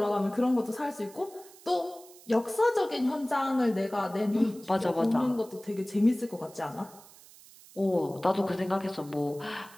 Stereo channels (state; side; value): noise; right; hiss, 22 dB below the sound